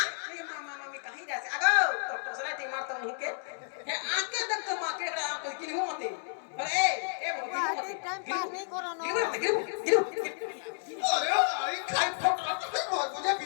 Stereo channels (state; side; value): silent; right; 57 dB below the other